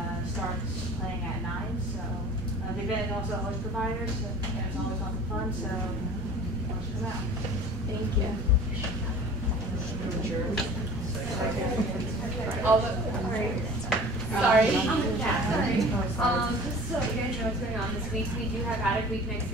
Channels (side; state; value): both; normal; correlation 0.43